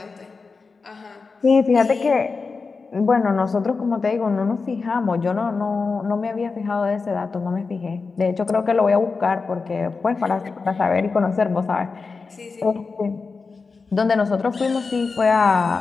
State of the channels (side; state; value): right; quieter; 4.5 dB